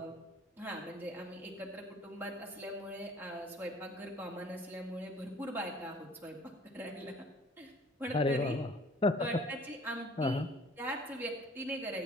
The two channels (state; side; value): normal; both; correlation 0.53